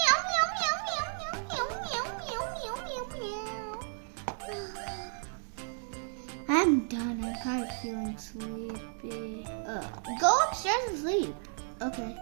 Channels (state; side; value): silent; left; 56 dB below the other